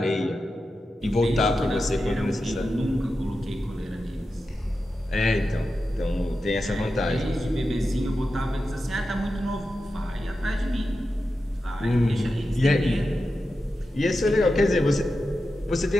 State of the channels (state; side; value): normal; both; correlation 0.91